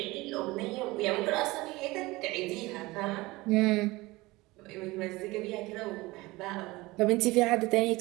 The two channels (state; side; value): quieter; left; 21.1 dB